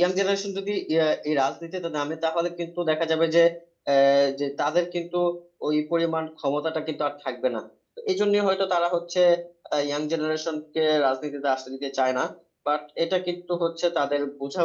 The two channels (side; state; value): both; identical; correlation 1.00